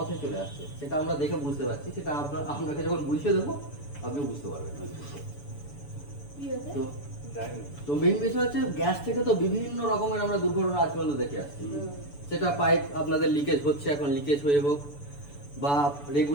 চলে আসছে, সেটা আমরা দেখে বুঝতে পারছি। সেটা আপনাকে যখন বুঝিয়ে দেবো আপনি বুঝতে পারবেন। তো তো মেইন বিষয় হচ্ছে গ্যাস থেকে তো বিভিন্ন রকমের আমরা দুর্ঘটনা আজ পর্যন্ত দেখে আসছি। সেটা পাইপ আপনাদের লিকেজ হচ্ছে, এখন লিকেজ হয়ে হোক, বা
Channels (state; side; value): late; right; 7.0 ms